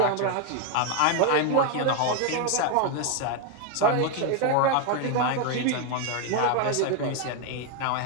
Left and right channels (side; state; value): both; different; correlation 0.01